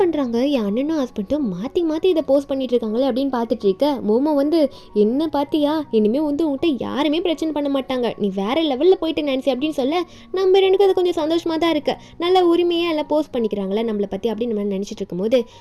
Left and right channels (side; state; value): both; identical; correlation 1.00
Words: பண்ணுறாங்க, என் அண்ணனும் ஹஸ்பண்டும் மாற்றி மாற்றி இதை போஸ்ட் பண்ணிட்டு இருக்காங்களே அப்படின்னு பார்த்துட்டு இருக்க. மோமோ வந்து, என்ன பார்த்தியா, இனிமேல் வந்து உங்கள்கிட்ட யாருமே பிரச்சனை பண்ண மாட்டாங்க, நீ வேற லெவலில் போயிட்டு நினச்சி அப்படின்னு சொல்ல, நம்ம ரெண்டுக்கும் அது கொஞ்சம் சந்தோஷமாக தான் இருக்கு, நல்ல உரிமையாக எல்லாம் போஸ்ட் பண்ணிக்கிறாங்களே நம்மளை பற்றி அப்படின்னு நம்ம நினச்சிட்டு இருக்கும்போது,